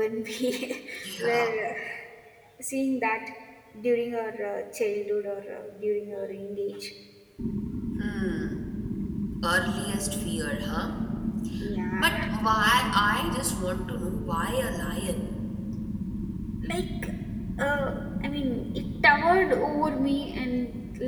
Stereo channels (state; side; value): identical; both; correlation 1.00